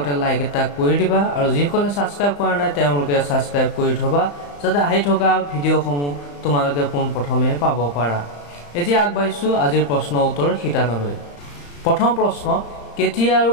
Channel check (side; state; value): right; late; 35 ms